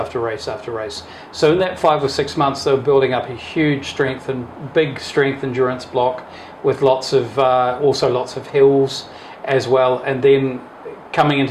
race after race. So in that 5 or 6 months, they were building up a huge big strength endurance block with lots of hills as well. And then coming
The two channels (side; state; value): both; identical; correlation 1.00